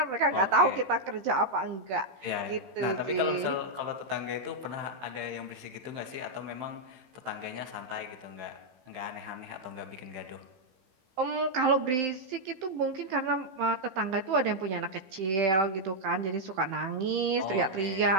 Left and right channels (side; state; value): left; late; 15 ms